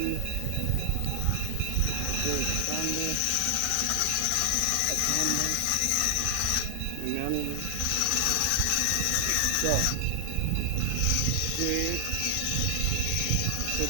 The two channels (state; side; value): different; both; correlation 0.00